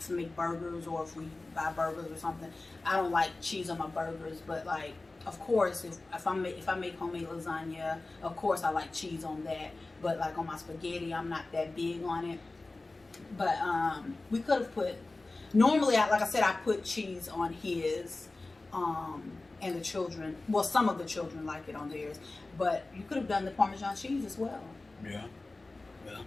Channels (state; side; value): quieter; right; 3.2 dB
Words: burgers, or if we buy burgers or something, I don't like cheese on my burgers. But of course, if I make homemade lasagna, of course I like cheese on that. But on my spaghetti, I'm not that big on it. But we could have put. Normally, like I said, I put cheese on his, and the children. Well, some of the children like it on theirs. But you could have done the Parmesan cheese as well. Yeah. Yeah.